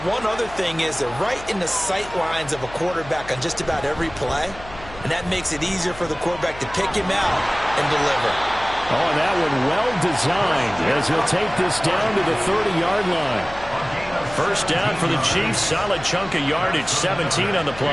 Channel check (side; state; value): left; noise; hum, 17 dB below the sound